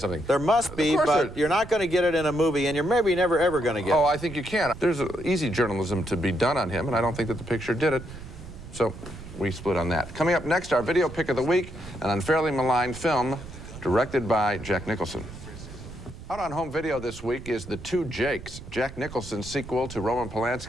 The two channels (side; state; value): right; noise; rumble, 14 dB below the sound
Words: There must be, but you're not going to get it in a movie, and you're maybe never ever going to get it. Oh, I think you can. There's easy journalism to be done on him, and I don't think that the picture did it. So we split on that. Coming up next, our video pick of the week, an unfairly maligned film directed by Jack Nicholson. Out on home video this week is The Two Jakes, Jack Nicholson's sequel to Roman